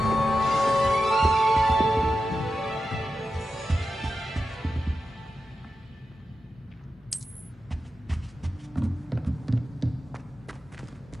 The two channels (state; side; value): normal; both; correlation 0.90